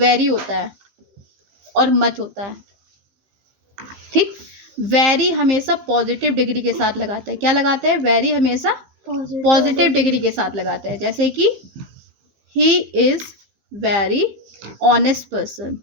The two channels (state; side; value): late; left; 15 ms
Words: होता है और मच होता है, ठीक. वेरी हमेशा पॉजिटिव डिग्री के साथ लगाते हैं. क्या लगाते हैं? वेरी हमेशा पॉजिटिव डिग्री के साथ लगाते हैं. जैसे कि he is very honest person.